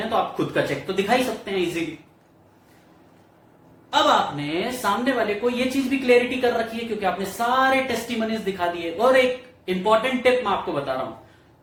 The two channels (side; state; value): both; identical; correlation 1.00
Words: तो आप खुद का चेक तो दिखा ही सकते हैं इजीली। अब आपने सामने वाले को ये चीज भी क्लैरिटी कर रखी है क्योंकि आपने सारे टेस्टिमनीज दिखा दिए। और एक इंपॉर्टेंट टिप मैं आपको बता रहा हूं,